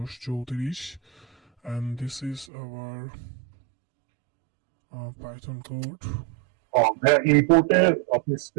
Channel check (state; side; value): drops out; left; at 2.5 s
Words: and this is our Python code. ইম্পোর্টে আপনি